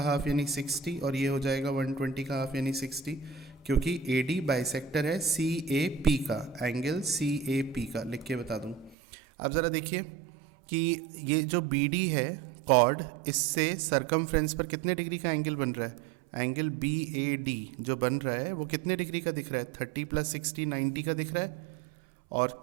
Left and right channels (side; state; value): left; drops out; at 9.0 s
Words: हाफ यानी 60, और ये हो जाएगा 120 का हाफ यानी 60, क्योंकि AD बाइसेक्टर है CAP का, एंगल CAP का. लिख के बता दूँ. अब ज़रा देखिए कि ये जो BD है कॉर्ड, इससे सरकमफ्रेंस पर कितने डिग्री का एंगल बन रहा है? एंगल BAD जो बन रहा है वो कितने डिग्री का दिख रहा है? 30 प्लस 60 90 का दिख रहा है.